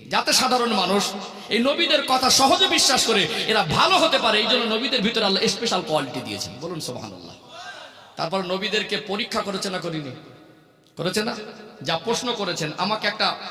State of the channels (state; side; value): identical; both; correlation 1.00